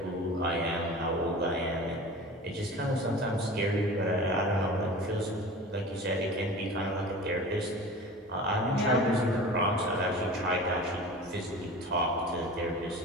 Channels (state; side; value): normal; both; correlation 0.37